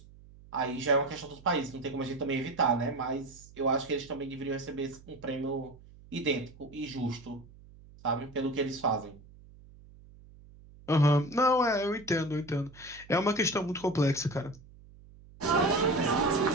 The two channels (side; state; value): right; noise; hum, 22 dB below the sound